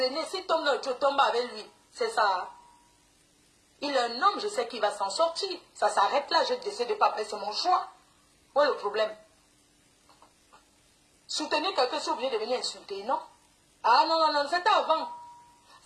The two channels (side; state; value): both; identical; correlation 1.00